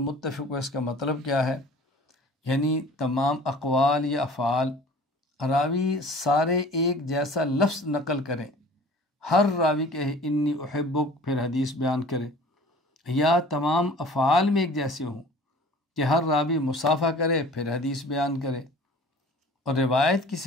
ہو، اس کا مطلب کیا ہے؟ یعنی تمام اقوال یا افعال راوی سارے ایک جیسا لفظ نقل کریں، ہر راوی کہے انی احبک پھر حدیث بیان کرے، یا تمام افعال میں ایک جیسے ہوں کہ ہر راوی مصافحہ کرے پھر حدیث بیان کرے۔ اور روایت کی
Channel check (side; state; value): both; normal; correlation 0.46